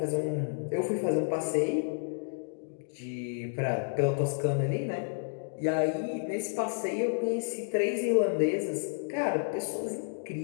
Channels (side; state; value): right; silent; digital silence